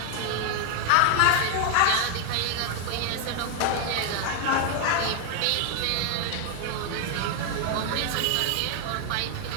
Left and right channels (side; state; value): both; different; correlation 0.00